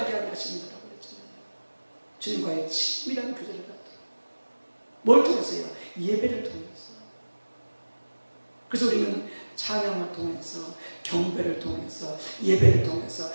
하려 하십니다라고 그랬잖아요. 주님과의 친밀한 교제를 갖도록. 뭘 통해서요? 예배를 통해서. 그래서 우리는 찬양을 통해서, 경배를 통해서, 예배를 통해서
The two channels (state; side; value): inverted; both; correlation -1.00